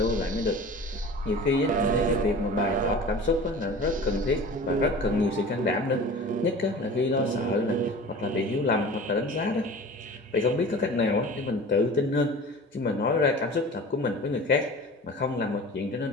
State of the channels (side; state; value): both; normal; correlation 0.39